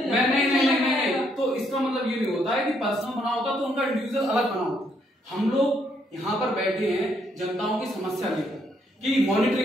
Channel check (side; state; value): both; normal; correlation 0.72